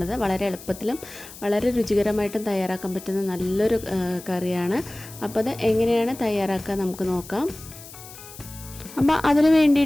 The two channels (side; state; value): left; noise; hiss, 16 dB below the sound